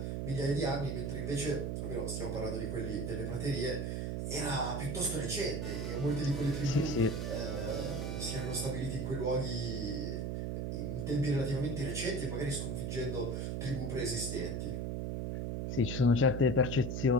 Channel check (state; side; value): noise; right; hum, 1 dB below the sound